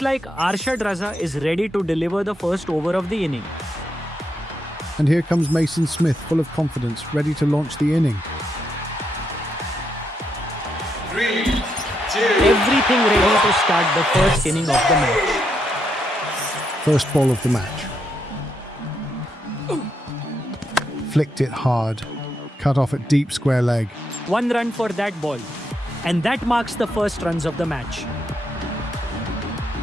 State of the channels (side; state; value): both; normal; correlation 0.80